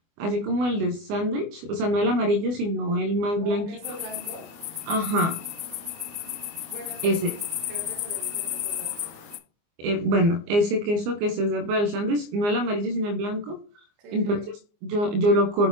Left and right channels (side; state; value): left; late; 24 ms